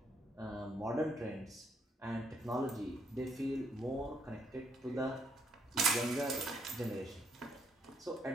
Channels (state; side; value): normal; both; correlation 0.73